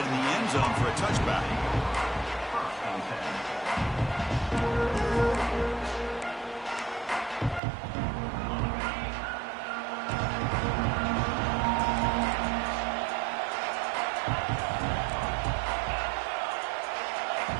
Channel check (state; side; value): drops out; left; at 7.6 s